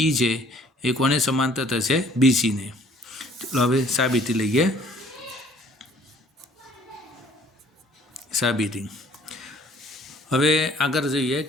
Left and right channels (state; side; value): normal; both; correlation 0.56